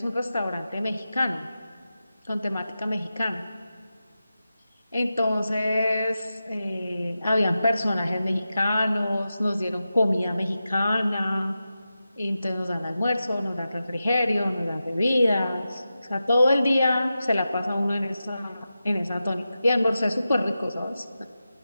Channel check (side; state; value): both; inverted; correlation -0.92